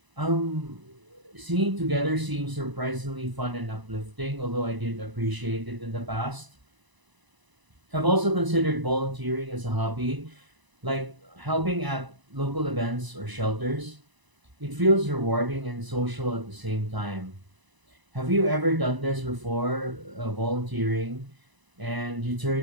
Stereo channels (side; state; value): left; late; 1.0 ms